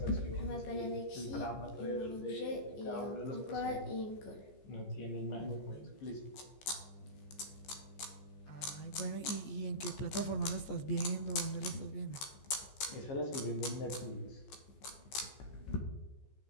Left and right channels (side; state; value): right; late; 15 ms